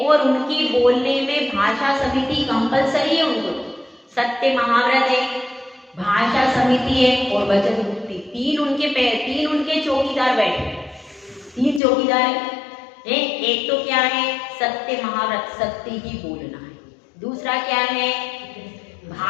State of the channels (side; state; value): right; drops out; at 11.8 s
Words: उनकी बोलने में भाषा समिति कंपलसरी है। उनको सत्य महाव्रत है, भाषा समिति है और वचन मुक्ति, तीन उनके चौकीदार बैठे, 3 चौकीदार है। एक तो क्या है, सत्य महाव्रत, सत्य ही बोलना है। दूसरा क्या है,